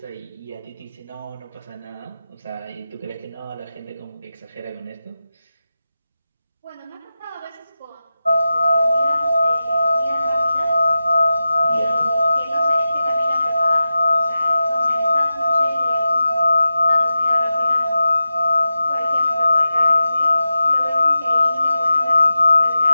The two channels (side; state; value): both; inverted; correlation -0.92